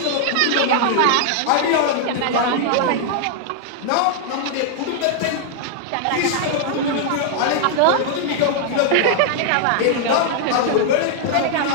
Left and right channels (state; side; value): different; both; correlation 0.00